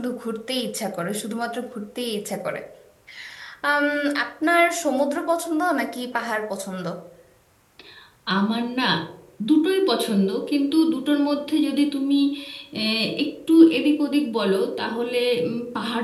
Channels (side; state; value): both; identical; correlation 1.00